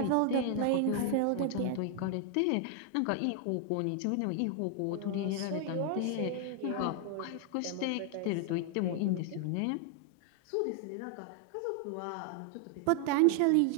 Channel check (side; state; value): both; different; correlation 0.00